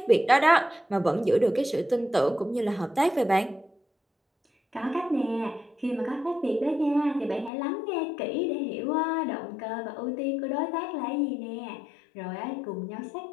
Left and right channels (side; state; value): right; drops out; at 7.5 s